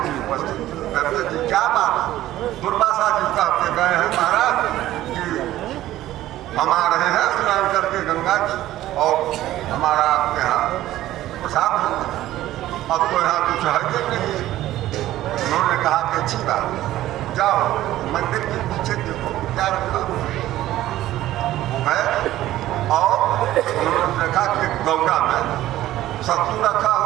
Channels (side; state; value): left; quieter; 14.5 dB